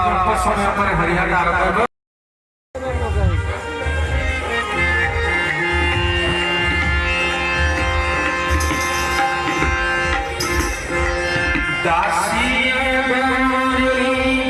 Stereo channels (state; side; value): identical; both; correlation 1.00